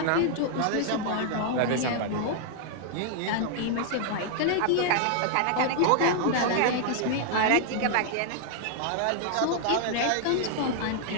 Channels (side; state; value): both; different; correlation 0.00